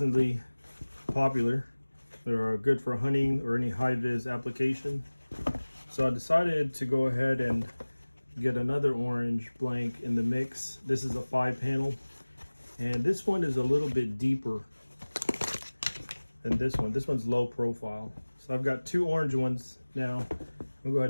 popular. They're good for hunting or any high-vis application. So I decided to go ahead and get another orange blank in the mix. This is a 5-panel, and this one is a little bit deeper than this one. This one's low profile. So I've got 2 orange ones now. I'll go ahead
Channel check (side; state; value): both; inverted; correlation -1.00